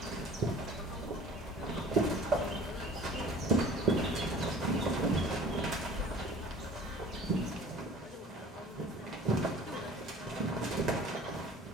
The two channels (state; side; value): normal; both; correlation 0.46